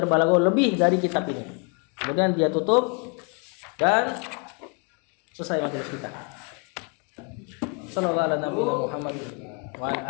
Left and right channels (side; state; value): right; quieter; 35.6 dB